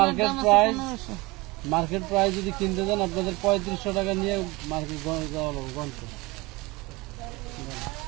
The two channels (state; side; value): quieter; left; 23.1 dB